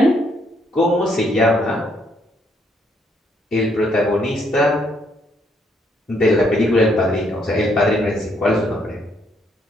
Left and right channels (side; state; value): both; normal; correlation 0.71